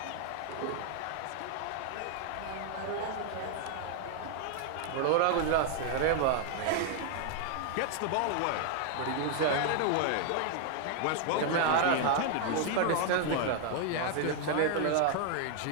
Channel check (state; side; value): different; both; correlation 0.00